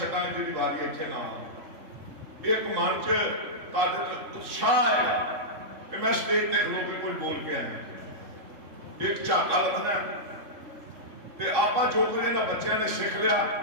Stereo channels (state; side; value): late; left; 3.7 ms